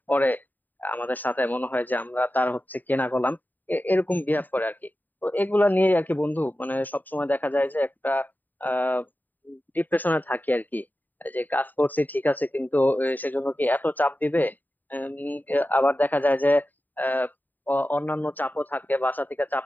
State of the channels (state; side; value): late; right; 0.088 ms